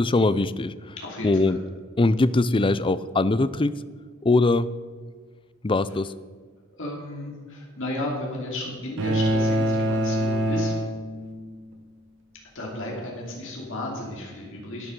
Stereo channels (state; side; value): normal; both; correlation 0.69